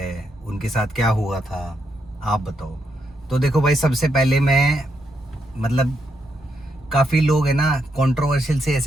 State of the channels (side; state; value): both; normal; correlation 0.80